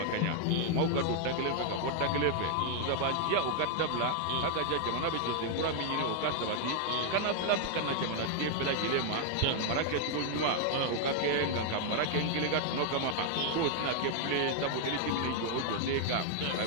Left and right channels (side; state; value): both; different; correlation 0.00